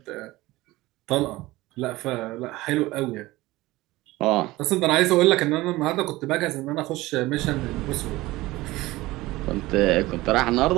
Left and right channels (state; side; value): quieter; left; 19.1 dB